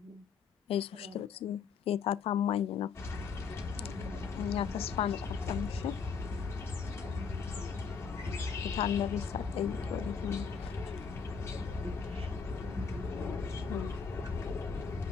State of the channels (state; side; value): quieter; right; 5.9 dB